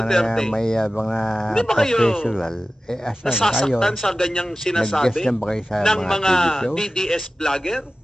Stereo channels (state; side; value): normal; both; correlation 0.95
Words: may mga Hindi ba kayo professional, asan kayo? nasasaktan sa ganyang sinasabi Nag-guest na ba kayo sa ng mga TV shows? DDS vlogger?